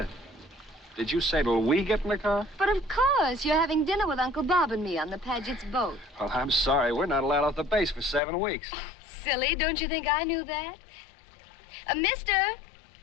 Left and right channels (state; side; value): drops out; right; at 8.2 s